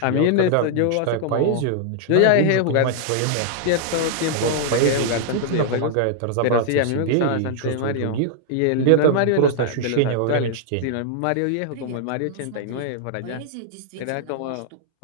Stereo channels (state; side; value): different; both; correlation -0.01